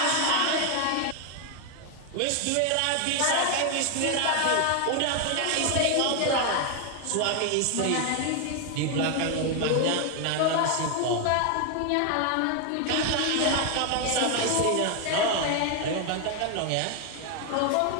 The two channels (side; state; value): both; different; correlation 0.01